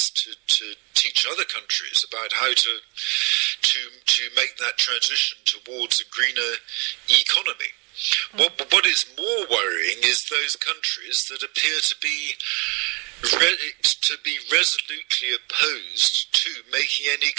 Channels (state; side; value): quieter; left; 30.8 dB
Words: to teach other countries about how to make that transition towards a greener economy. What is more worrying is those countries that appear to be resolutely opposed to making any